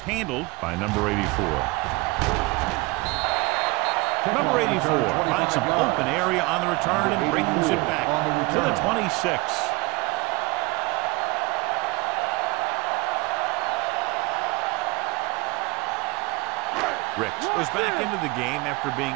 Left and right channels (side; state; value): left; quieter; 24.0 dB